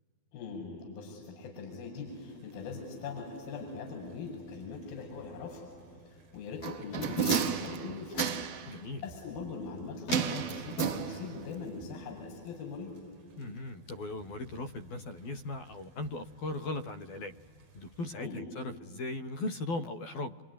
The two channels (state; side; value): late; right; 12 ms